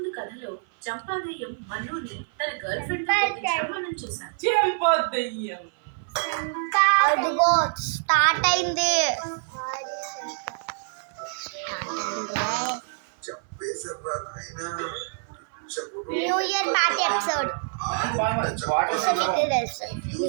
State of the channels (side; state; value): left; silent; 57 dB below the other